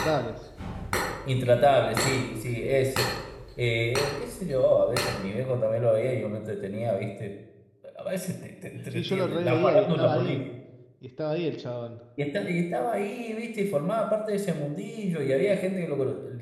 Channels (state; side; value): identical; both; correlation 1.00